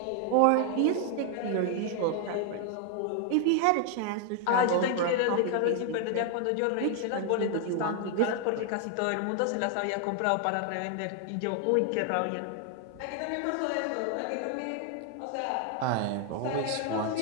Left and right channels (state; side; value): different; both; correlation 0.00